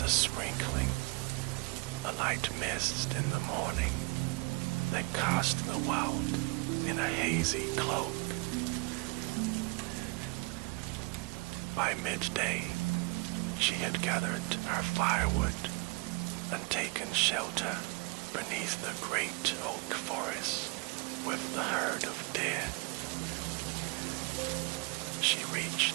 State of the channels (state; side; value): quieter; left; 28.8 dB